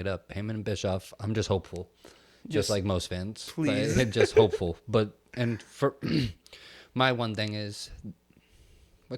up. Heyman and Bischoff, I'm just hopeful. Just like most fans. Please. Just hopeful. And for my one thing is, we're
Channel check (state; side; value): identical; both; correlation 1.00